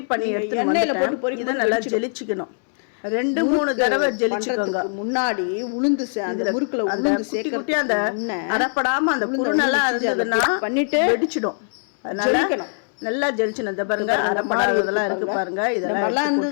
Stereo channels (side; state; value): right; silent; digital silence